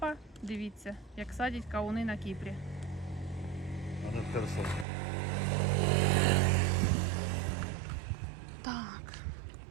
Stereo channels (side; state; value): left; drops out; at 4.9 s